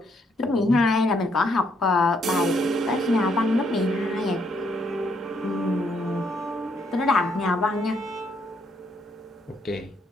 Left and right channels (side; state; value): both; normal; correlation 0.73